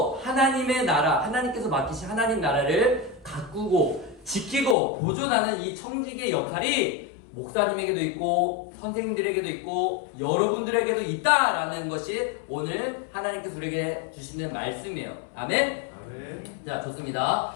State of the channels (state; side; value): drops out; right; at 4.8 s